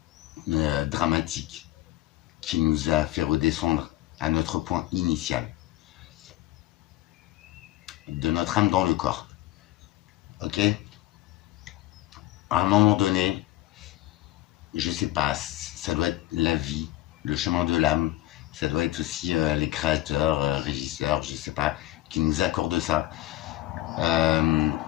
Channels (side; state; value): right; quieter; 15.5 dB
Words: dramatiques, qui nous a fait redescendre à notre point initial, de notre âme dans le corps. Ok? À un moment donné, je sais pas, ça doit être la vie, le chemin de l'âme, ça doit être aussi les créateurs, régisseurs, je sais pas, qui nous accordent ça.